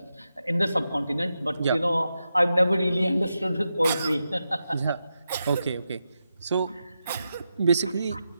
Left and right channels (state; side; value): inverted; both; correlation -0.88